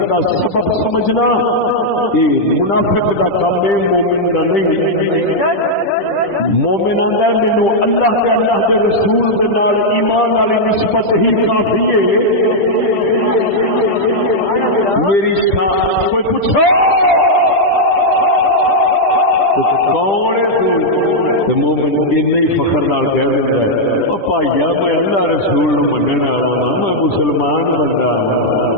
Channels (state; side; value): late; right; 10 ms